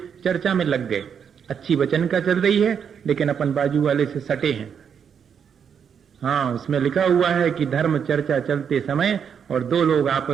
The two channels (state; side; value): quieter; left; 7.4 dB